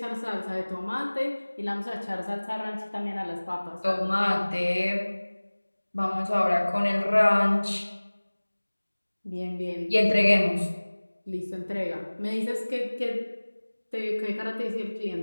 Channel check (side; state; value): both; inverted; correlation -1.00